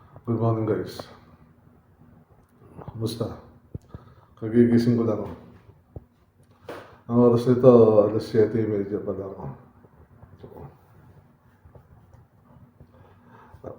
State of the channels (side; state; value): both; identical; correlation 1.00